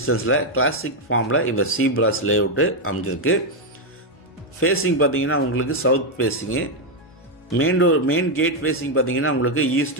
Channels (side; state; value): both; normal; correlation 0.02